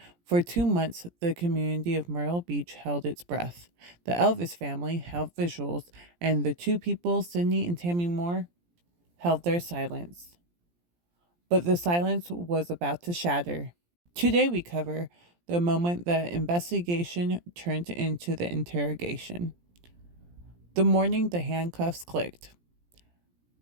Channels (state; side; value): late; left; 17 ms